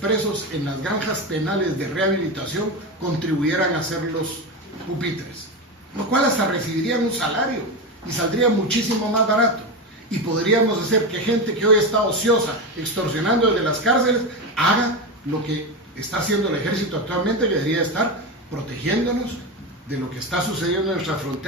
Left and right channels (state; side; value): normal; both; correlation 0.17